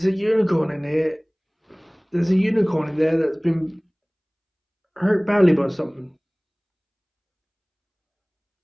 a unicorn in here. There's a unicorn in there that's been hurt badly by something.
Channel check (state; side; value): identical; both; correlation 1.00